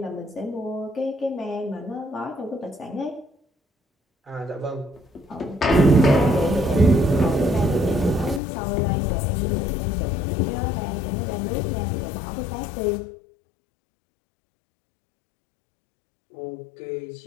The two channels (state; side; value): drops out; right; at 8.4 s